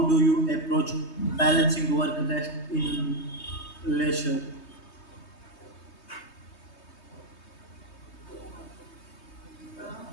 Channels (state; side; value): late; right; 3.2 ms